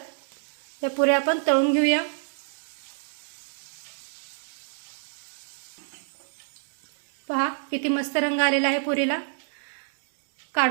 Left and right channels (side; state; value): left; silent; digital silence